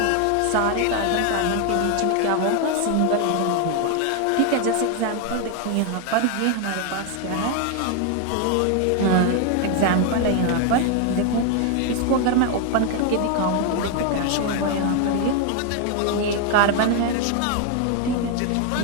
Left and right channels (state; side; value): different; both; correlation 0.01